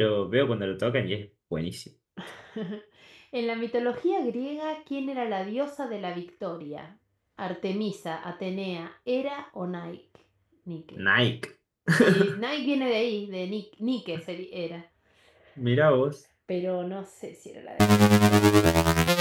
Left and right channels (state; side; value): identical; both; correlation 1.00